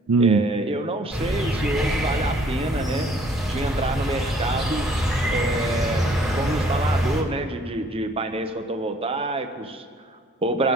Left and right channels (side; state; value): both; normal; correlation 0.59